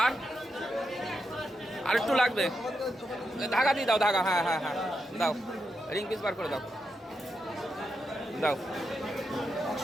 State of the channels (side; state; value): both; normal; correlation 0.85